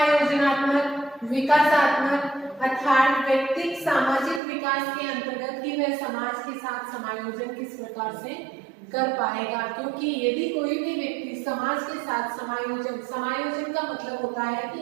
विकासात्मक, अर्थात व्यक्तिक सामाजिक विकास के अंतर्गत कि वह समाज के साथ समायोजन किस प्रकार से कर पाएगा। क्योंकि यदि कोई भी व्यक्ति समाज के साथ समायोजन का मतलब होता है कि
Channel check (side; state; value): left; drops out; at 4.4 s